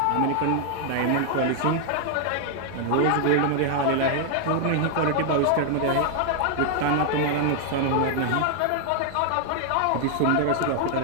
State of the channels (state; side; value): different; both; correlation 0.00